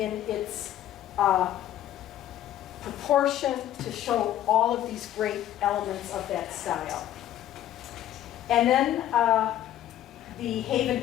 its proportion to show all of these great elements of that style. And then the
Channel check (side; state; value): right; quieter; 12.2 dB